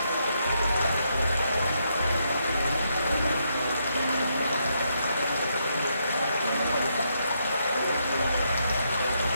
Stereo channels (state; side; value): inverted; both; correlation -0.78